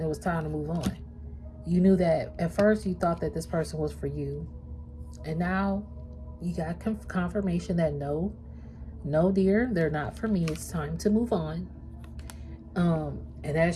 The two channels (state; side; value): identical; both; correlation 1.00